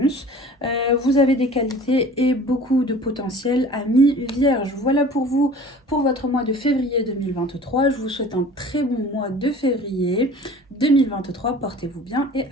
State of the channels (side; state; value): both; normal; correlation 0.44